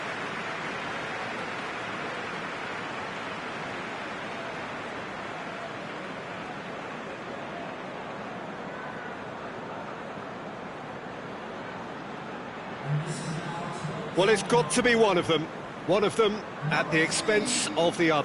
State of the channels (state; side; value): identical; both; correlation 1.00